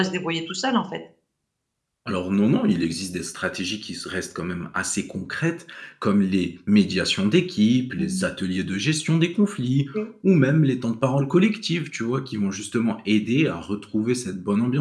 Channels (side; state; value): both; identical; correlation 1.00